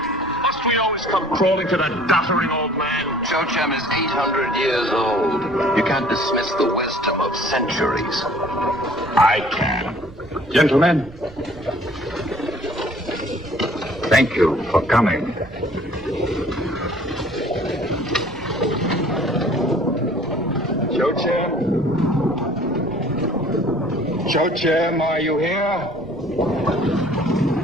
Must we always come crawling to the doddering old man? Chochim is 800 years old. You can't dismiss the wisdom of centuries. I can. Gentlemen, thank you for coming. Chochim, are you here?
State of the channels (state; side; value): noise; right; rumble, 19 dB below the sound